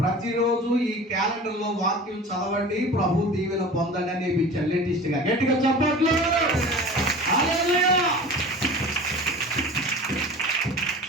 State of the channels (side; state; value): both; normal; correlation 0.38